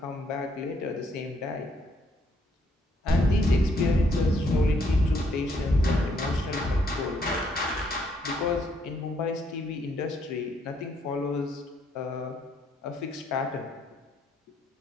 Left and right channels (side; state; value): both; normal; correlation 0.71